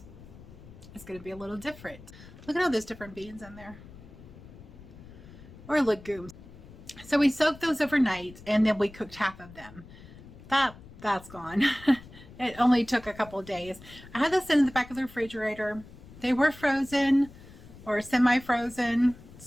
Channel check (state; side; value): noise; left; rumble, 19 dB below the sound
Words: it's going to be a little different. Look at all those different beans in there, or legumes. So we soaked those overnight, and then we cooked half of them. That's gone. It only took a couple of days. I had this in the back of the refrigerator. They were frozen or semi-frozen,